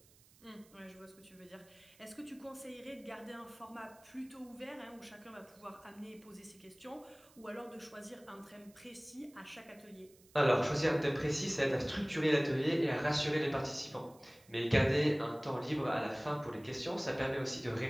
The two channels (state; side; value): noise; right; hiss, 27 dB below the sound